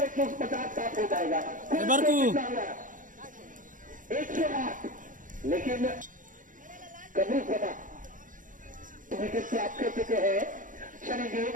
150 साफ हो जाएगा। 108, लेकिन कबूल सभा विकेट प्राप्त कर चुके हैं। चलेंगे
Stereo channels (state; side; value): late; left; 0.38 ms